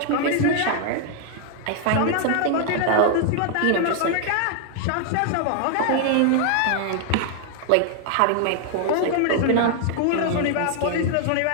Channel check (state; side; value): different; both; correlation 0.00